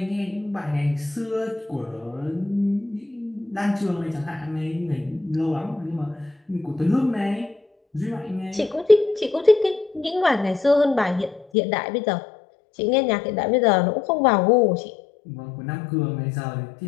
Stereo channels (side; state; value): right; drops out; at 11.5 s